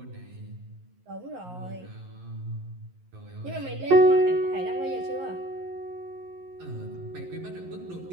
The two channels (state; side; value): late; left; 11 ms